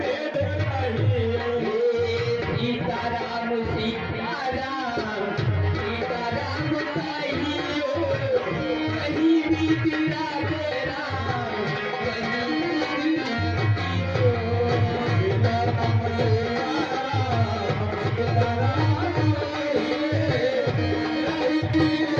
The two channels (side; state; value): both; identical; correlation 1.00